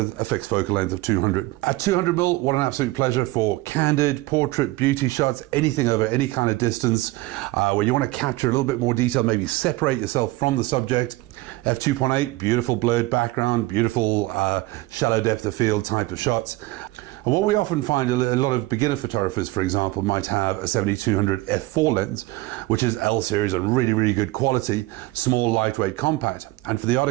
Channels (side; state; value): left; quieter; 19.2 dB